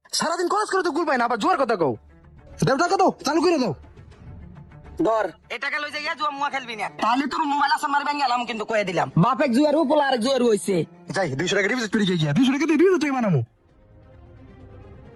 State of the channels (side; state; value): both; identical; correlation 1.00